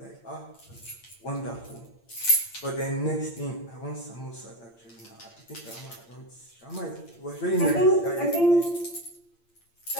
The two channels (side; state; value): right; late; 8.7 ms